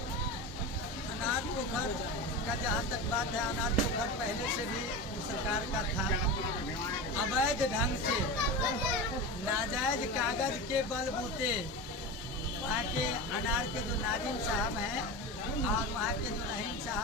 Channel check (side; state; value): both; normal; correlation 0.25